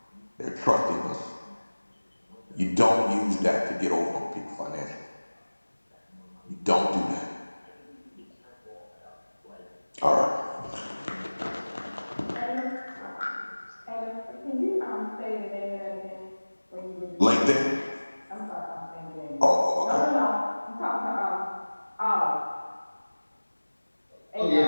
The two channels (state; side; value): inverted; both; correlation -1.00